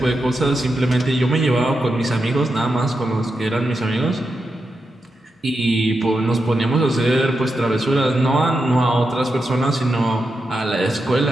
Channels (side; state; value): both; normal; correlation 0.87